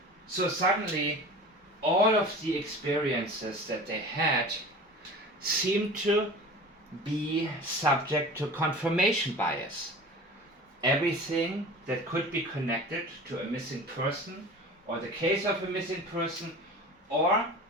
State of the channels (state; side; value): normal; both; correlation 0.37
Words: So suddenly, all of the experiences that they had seem to be subject to confirmation bias. Everything that could be connected to a missing person, or the case of a missing person, or